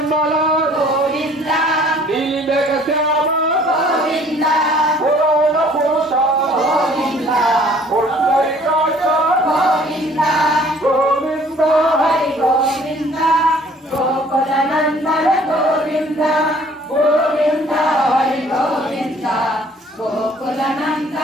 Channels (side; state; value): both; normal; correlation 0.55